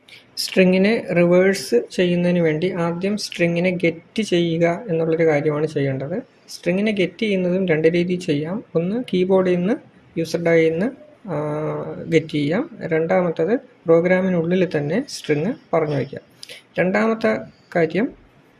സ്ട്രിങ്ങിനെ റിവേഴ്സ് ചെയ്യുന്നതിന് വേണ്ടി ആദ്യം സ്ട്രിങ്ങിനെ ഗെറ്റ് ചെയ്യുക എന്നുള്ളൊരു കാര്യമാണ് ചെയ്യേണ്ടത്. സ്ട്രിങ്ങിനെ ഗെറ്റ് ചെയ്യുന്നതും രണ്ട് രീതിയിൽ ചെയ്യാം. ഒന്ന് കീബോർഡിൽ നിന്ന് യൂസർ ഡൈയിൽ നിന്ന് ഗെറ്റ് ചെയ്യാം. രണ്ടാമത്തത് പ്രോഗ്രാമിനുള്ളിൽ തന്നെ സ്ട്രിങ് പറഞ്ഞു വയ്ക്കാം. രണ്ടാമത്തെ കാര്യം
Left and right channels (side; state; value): both; identical; correlation 1.00